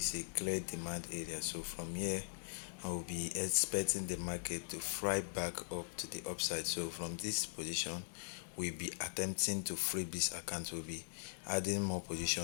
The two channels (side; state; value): right; silent; digital silence